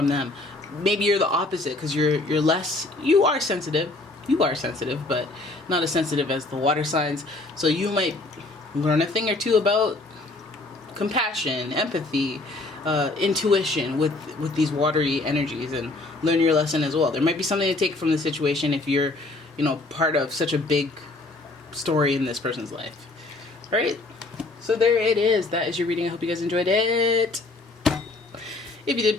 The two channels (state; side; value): quieter; right; 3.0 dB